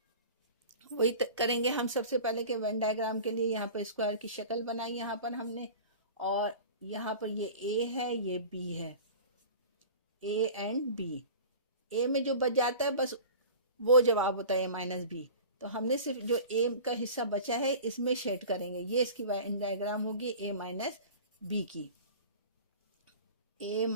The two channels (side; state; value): both; inverted; correlation -0.39